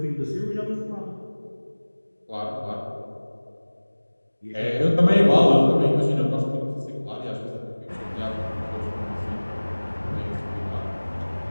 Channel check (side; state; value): both; inverted; correlation -1.00